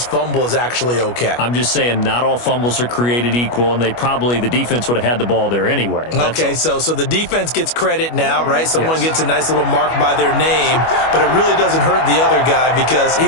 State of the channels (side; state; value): right; late; 25 ms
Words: fumble is actually okay. I'm just saying not all fumbles are created equal, and the defense would have had the ball there anyway. Okay, so the defense gets credit now, right? Someone gets a nice little mark by their name, but it really doesn't hurt the other guy because he